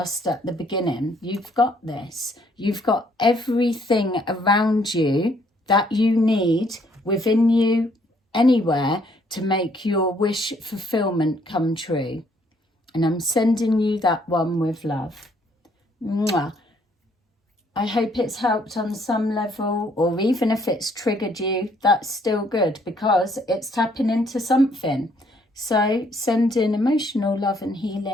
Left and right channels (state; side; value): normal; both; correlation 0.66